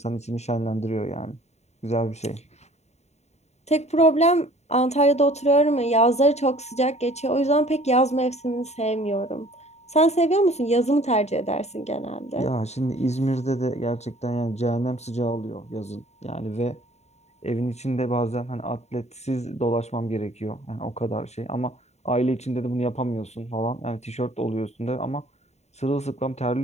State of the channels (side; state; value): right; late; 0.32 ms